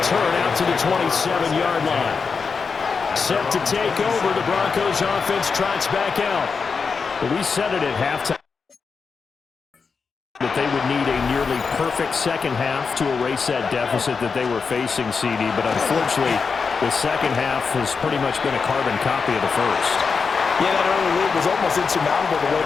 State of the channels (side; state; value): right; quieter; 5.2 dB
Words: out to the 27-yard line. Set to take over, the Broncos offense trots back out. But we said it at halftime that they would need a nearly perfect second half to erase that deficit that they were facing, CD. But unfortunately, the second half has pretty much been a carbon copy of the first. Yeah, that early lead was almost insurmountable the way